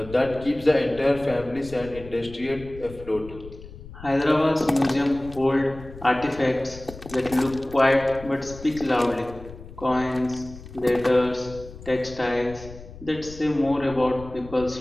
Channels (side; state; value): left; noise; rumble, 16 dB below the sound